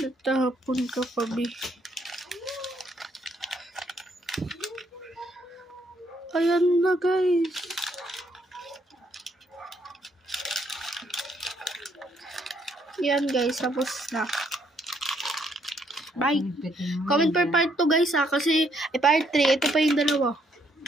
ka pa, be. Ayan na, guys. Yan, guys. Tapos na. Bye. Comment per part 2, guys, ha. Kasi, part 3. Ito pa yung 2.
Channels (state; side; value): normal; both; correlation 0.71